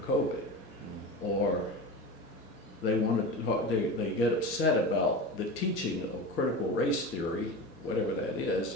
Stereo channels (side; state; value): both; normal; correlation 0.28